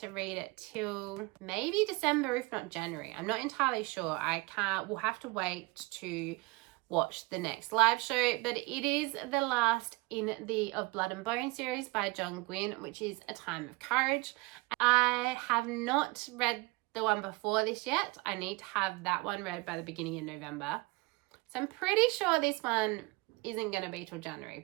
read it till maybe December, if not January. I'm not entirely sure. We'll have to wait to watch the next live show, but it is the last in the Of Blood and Bone series by John Gwynne, which is A Time of Courage. I have not read the one before this yet. I need to have that one read by the beginning of November. So I'm pretty sure this one isn't going to be till January,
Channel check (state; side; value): quieter; left; 25.1 dB